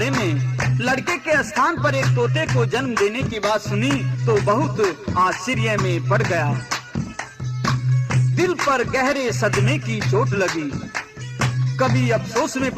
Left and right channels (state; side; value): identical; both; correlation 1.00